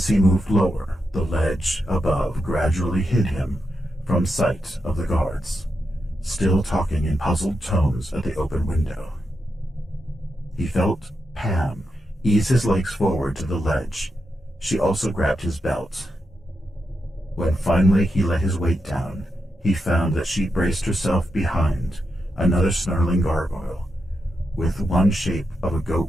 he moved lower, the ledge above gradually hid him from sight of the guards, still talking in puzzled tones at the open window. He felt Pam ease his legs forward to the ledge. She also grabbed his belt. When finally he let his weight down, he found that she braced herself behind another snarling gargoyle with one shape of a goat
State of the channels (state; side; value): normal; both; correlation 0.86